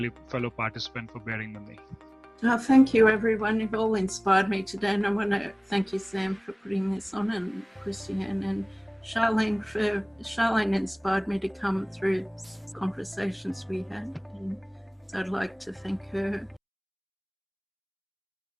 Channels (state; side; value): identical; both; correlation 1.00